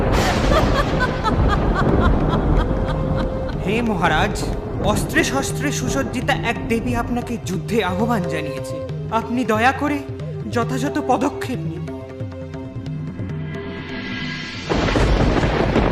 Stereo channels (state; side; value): identical; both; correlation 1.00